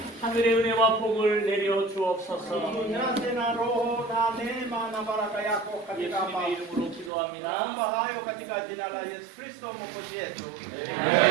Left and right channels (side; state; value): left; drops out; at 7.1 s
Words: 하늘의 은혜와 복을 내려 주옵소서. Tujaze na roho na neema na baraka yako katika hapa. 예수님의 이름으로 기도합니다. Naomba hayo katika jina la Yesu Kristo Mwokozi wetu.